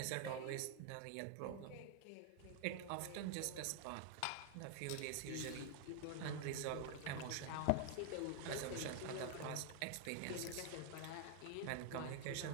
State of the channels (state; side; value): different; both; correlation 0.00